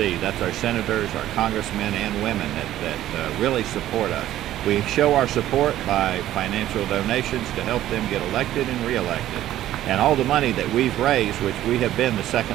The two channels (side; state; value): left; quieter; 13.3 dB